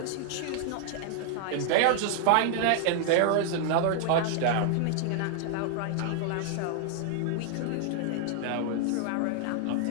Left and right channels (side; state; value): both; different; correlation -0.01